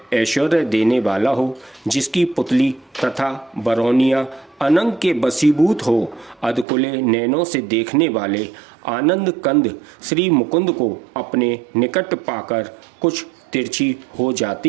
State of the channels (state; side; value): drops out; left; at 6.7 s